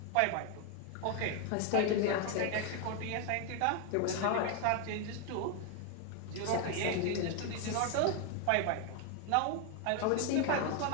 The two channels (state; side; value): different; both; correlation 0.01